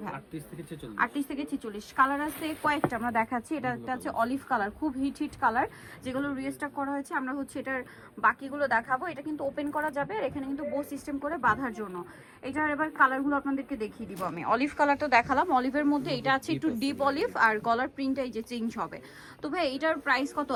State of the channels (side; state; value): both; identical; correlation 1.00